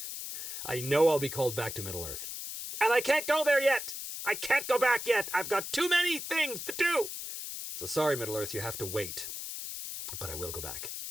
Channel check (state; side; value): noise; left; hiss, 7 dB below the sound